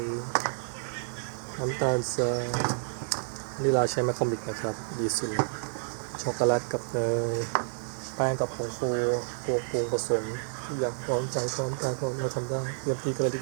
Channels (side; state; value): left; silent; 58 dB below the other